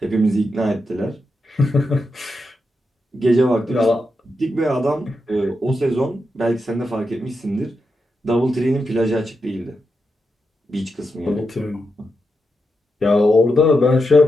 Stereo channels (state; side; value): normal; both; correlation 0.86